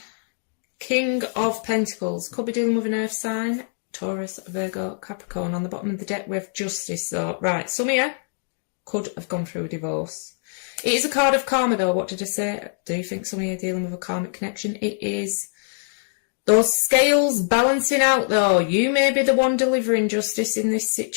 King of Pentacles, could be dealing with an earth sign, Taurus, Virgo, Capricorn. On the bottom of the deck we have Justice. So, right, some of you could have gone through a divorce. It is a card of karma though. What did I say? Do you think some of you are dealing with a karmic connection? It is those scales balancing out though. You may be the one delivering justice in this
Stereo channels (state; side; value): silent; right; digital silence